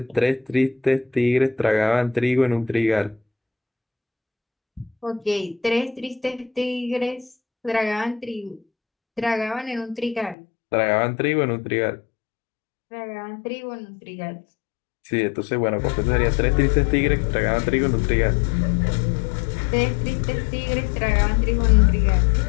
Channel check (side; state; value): right; drops out; at 10.4 s